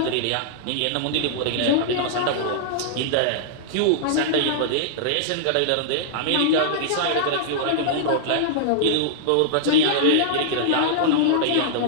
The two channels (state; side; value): different; both; correlation -0.02